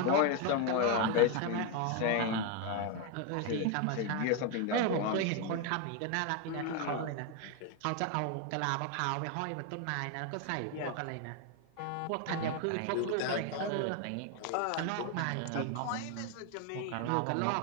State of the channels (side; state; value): both; different; correlation 0.01